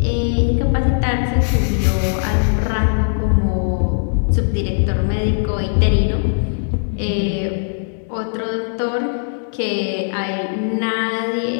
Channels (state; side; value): silent; right; digital silence